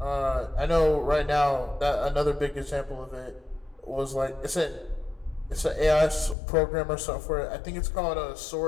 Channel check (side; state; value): right; drops out; at 6.4 s